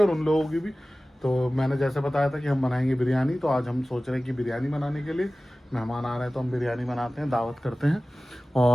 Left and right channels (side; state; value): both; normal; correlation 0.97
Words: उन लोगों की भी। तो मैंने जैसे बताया था कि हम बनाएंगे बिरयानी, तो आज हम सोच रहे हैं कि बिरयानी बनाने के लिए मेहमान आ रहे हैं, तो हम बिरयानी बनाते हैं, दावत करते हैं।